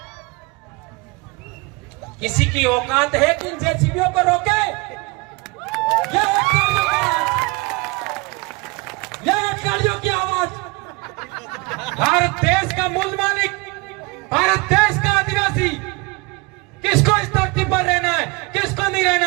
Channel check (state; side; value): quieter; left; 26.7 dB